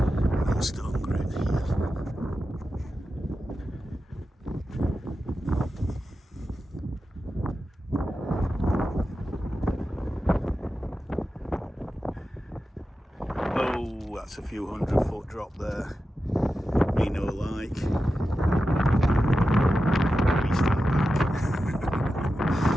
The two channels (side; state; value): both; normal; correlation 0.91